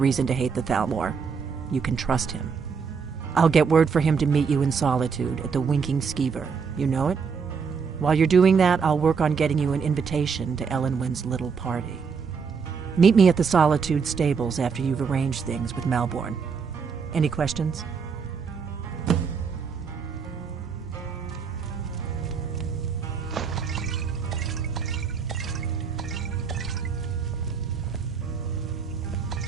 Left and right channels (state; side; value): quieter; left; 5.9 dB